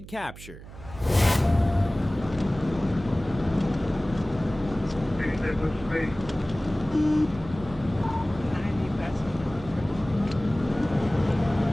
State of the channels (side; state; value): right; noise; hum, 16 dB below the sound